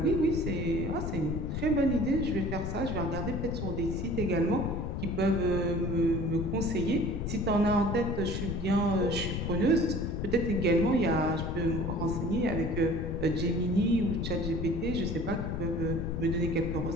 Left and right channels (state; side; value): noise; left; rumble, 3 dB below the sound